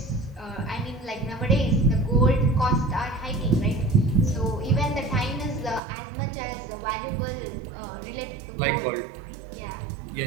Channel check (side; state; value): left; drops out; at 5.8 s